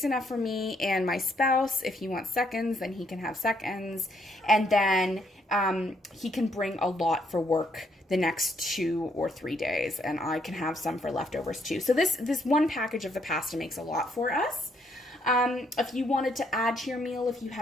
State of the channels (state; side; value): normal; both; correlation 0.72